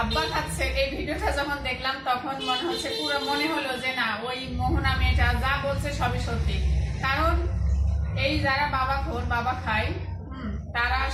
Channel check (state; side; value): identical; both; correlation 1.00